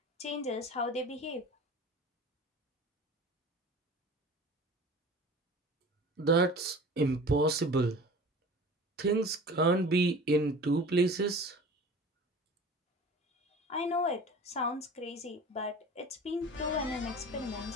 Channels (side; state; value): both; normal; correlation 0.40